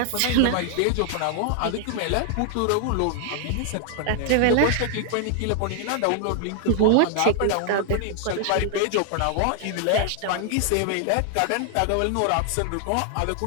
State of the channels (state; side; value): different; both; correlation 0.00